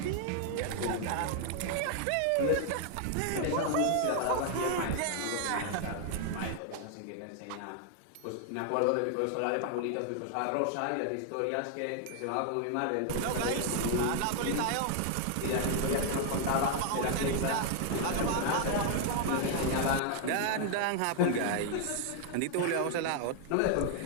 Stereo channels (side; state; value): both; different; correlation 0.00